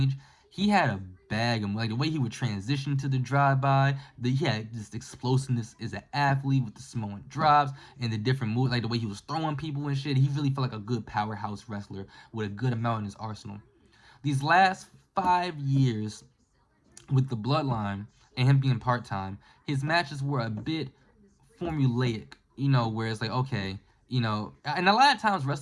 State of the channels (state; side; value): identical; both; correlation 1.00